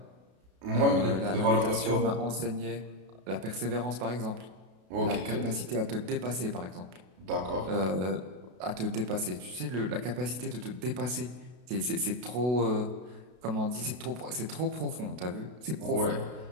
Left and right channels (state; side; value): late; left; 32 ms